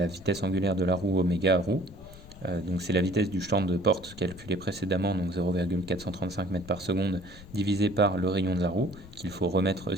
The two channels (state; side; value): noise; left; rumble, 18 dB below the sound